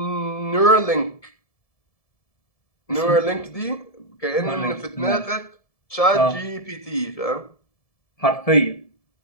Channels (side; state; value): right; late; 1.7 ms